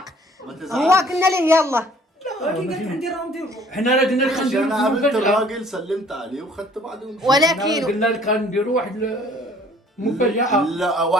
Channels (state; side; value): normal; both; correlation 0.56